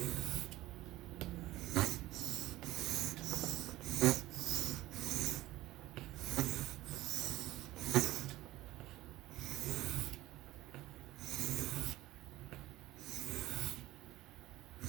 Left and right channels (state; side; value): quieter; left; 16.7 dB